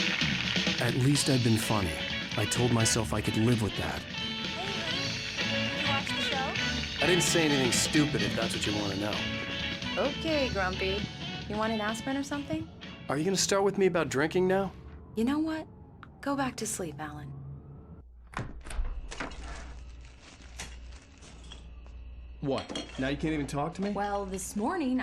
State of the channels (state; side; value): identical; both; correlation 1.00